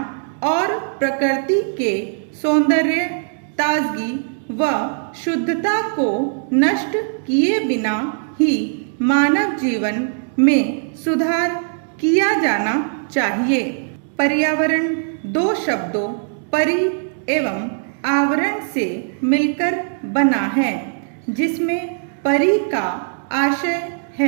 और प्रकृति के सौंदर्य, ताजगी व शुद्धता को नष्ट किए बिना ही मानव जीवन में सुधार किया जाना चाहिए। पर्यावरण दो शब्दों परि एवं आवरण से मिलकर बना है, जिसमें परि का आशय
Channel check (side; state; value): left; silent; 63 dB below the other